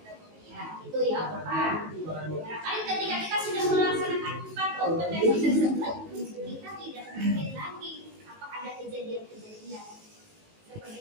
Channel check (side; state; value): left; late; 19 ms